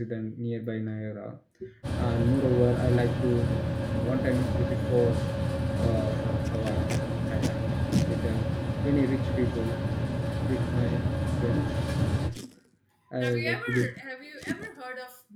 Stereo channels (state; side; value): identical; both; correlation 1.00